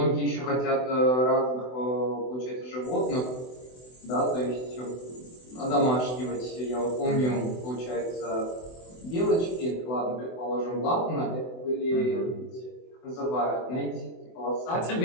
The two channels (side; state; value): right; late; 24 ms